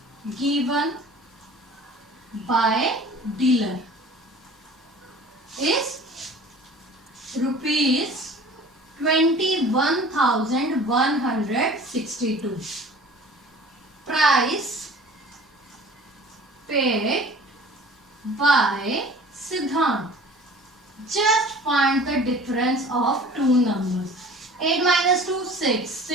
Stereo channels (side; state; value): both; normal; correlation 0.45